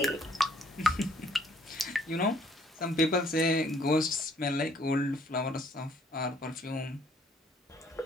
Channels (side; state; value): both; normal; correlation 0.62